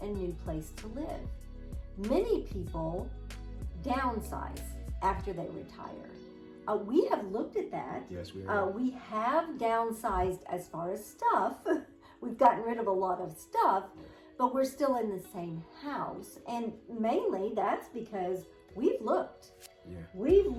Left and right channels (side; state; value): both; identical; correlation 1.00